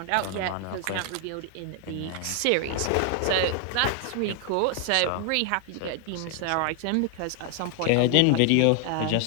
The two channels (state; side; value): different; both; correlation 0.00